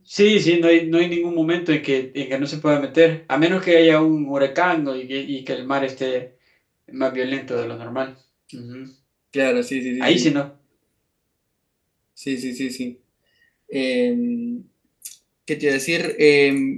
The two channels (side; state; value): both; identical; correlation 1.00